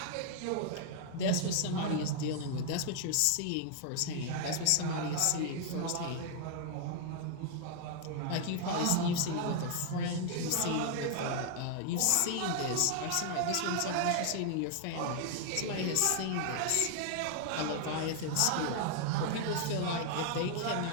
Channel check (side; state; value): both; different; correlation 0.00